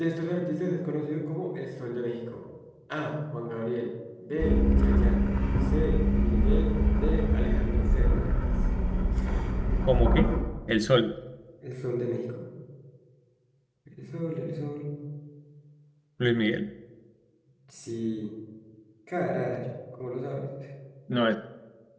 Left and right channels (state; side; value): identical; both; correlation 1.00